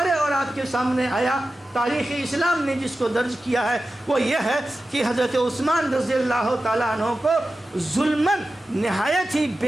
اور آپ کے سامنے آیا، تاریخ اسلام نے جس کو درج کیا ہے وہ یہ ہے کہ حضرت عثمان رضی اللہ تعالیٰ عنہ کو ظلماً نہایت ہی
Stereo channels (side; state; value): both; normal; correlation 0.93